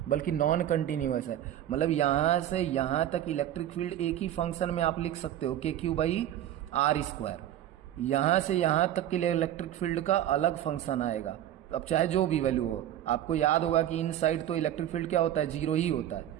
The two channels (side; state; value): left; quieter; 11.9 dB